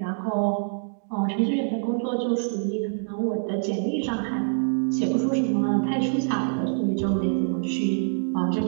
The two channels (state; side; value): silent; left; digital silence